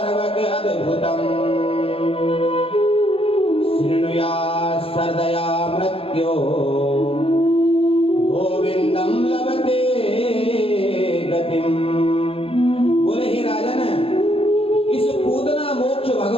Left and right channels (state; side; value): late; right; 0.27 ms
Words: अद्भुतम शृणुया सर्दया मृत्यो गोविंदम लभते गतिम। बोले हे राजन, इस पूतना मोक्ष